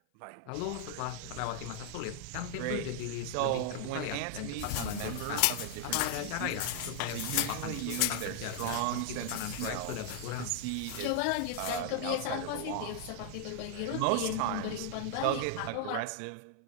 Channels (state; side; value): different; both; correlation 0.00